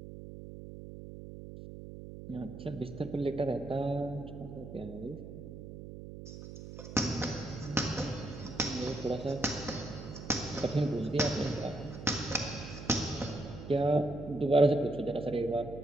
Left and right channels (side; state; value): right; noise; hum, 12 dB below the sound